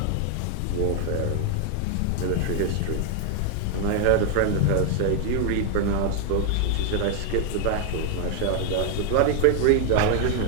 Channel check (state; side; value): different; both; correlation 0.00